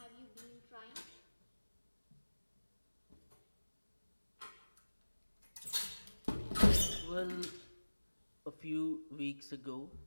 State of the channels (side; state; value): both; inverted; correlation -1.00